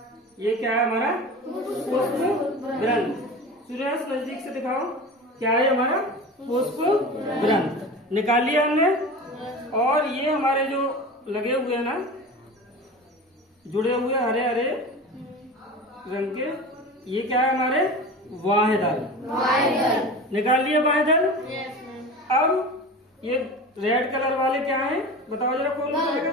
ये क्या है हमारा पुष्प ग्रंथ। सूर्यांश नजदीक से दिखाओ, क्या है हमारा पुष्प ग्रंथ, निकाल लिया हमने। और ये हमारे जो लगे हुए हैं ना, जुड़े हुए हरे हरे रंग के, ये क्या है हमारे बाह्य दल, निकाल लिए बाह्य दल। अब ये रेड कलर वाले क्या है बताओ जरा, कौन बताएगा?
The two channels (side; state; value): both; normal; correlation 0.33